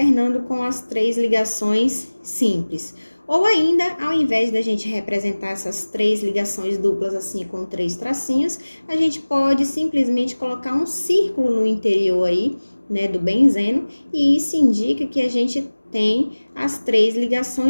com as 3 ligações simples. Ou ainda, ao invés da gente representar essas 3 ligações duplas assim com 3 tracinhos, a gente pode simplesmente colocar um círculo no interior aí, né, do benzeno, e isso indica que a gente tem as 3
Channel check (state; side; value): inverted; both; correlation -1.00